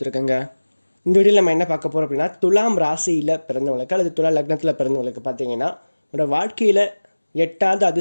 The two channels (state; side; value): inverted; both; correlation -1.00